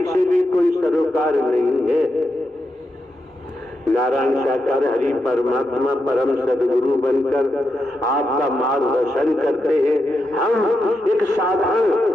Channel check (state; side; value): normal; both; correlation 0.85